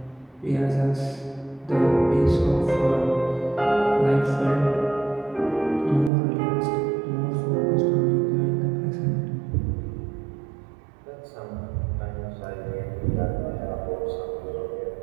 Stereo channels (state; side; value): drops out; left; at 6.1 s